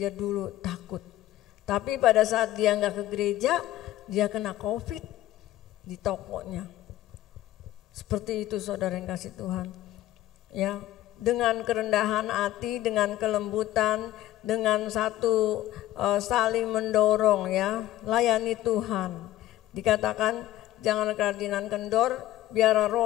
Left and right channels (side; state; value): right; quieter; 14.4 dB